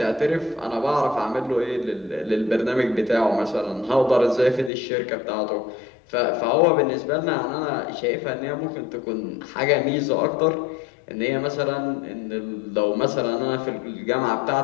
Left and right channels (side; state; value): right; drops out; at 4.7 s